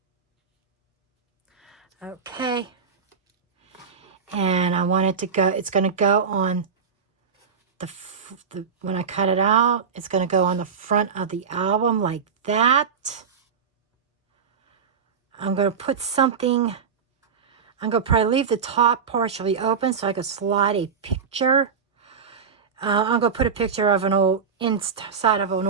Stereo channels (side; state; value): left; quieter; 6.3 dB